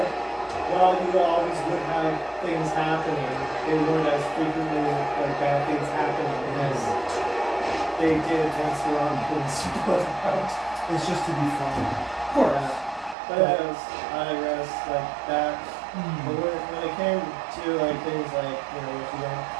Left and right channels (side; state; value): left; drops out; at 13.2 s